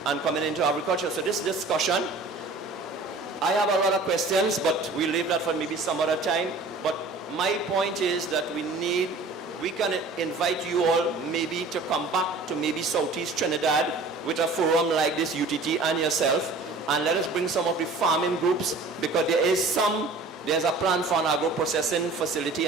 and coming into agriculture. So this discussion, I have a lot of questions, but we'll leave that for maybe some other time. But my point is that we can invite you all maybe to come back to maybe Southeast Trinidad with a forum like this, UTT and yourself, and let us bring some of the farming groups, because there's a plan for an agro-processing facility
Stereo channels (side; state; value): left; quieter; 3.4 dB